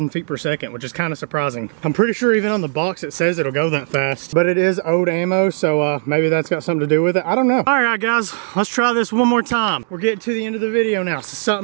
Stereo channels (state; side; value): silent; left; digital silence